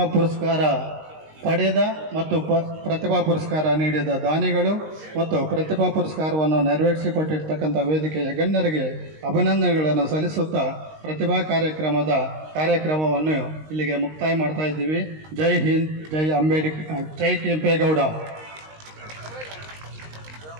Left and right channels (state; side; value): late; left; 19 ms